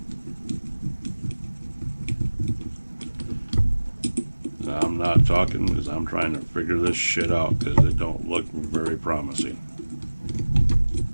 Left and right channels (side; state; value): both; inverted; correlation -1.00